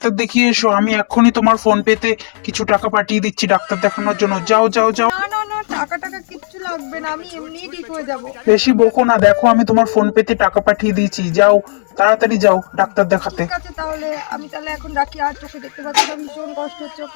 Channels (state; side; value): silent; right; digital silence